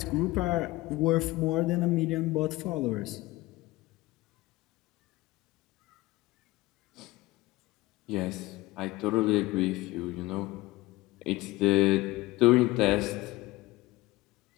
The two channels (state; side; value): quieter; right; 19.6 dB